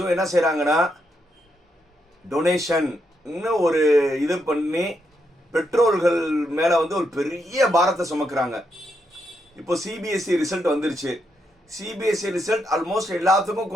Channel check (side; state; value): both; normal; correlation 0.80